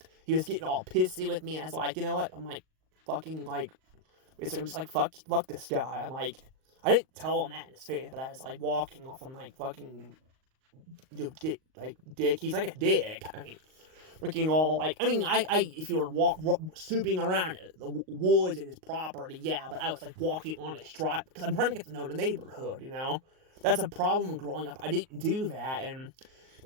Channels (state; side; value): late; left; 38 ms